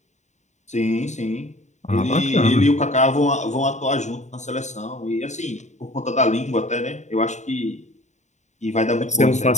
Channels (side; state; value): right; late; 0.34 ms